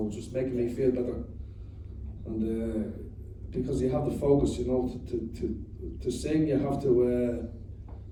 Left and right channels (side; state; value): both; identical; correlation 1.00